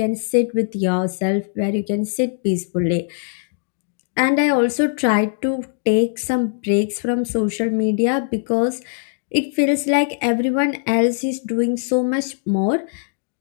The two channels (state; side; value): silent; right; digital silence